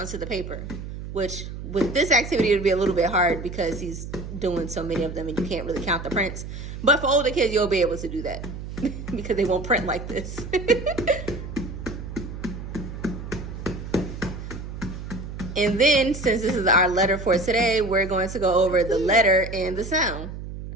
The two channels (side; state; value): right; noise; hum, 9 dB below the sound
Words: the paper, which with this activity, it'll be a little bit hard because he's doing so many of them and you can't really count the prints. But for older kids, you'll be able to do that because they won't print like this. And then, since this is our letter for today, we're going to go over the letter and the sound.